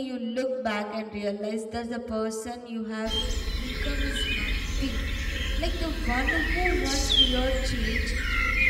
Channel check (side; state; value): both; identical; correlation 1.00